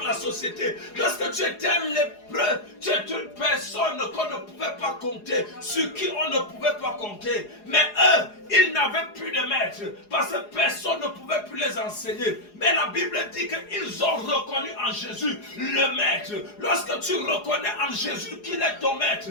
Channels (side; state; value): right; late; 4.8 ms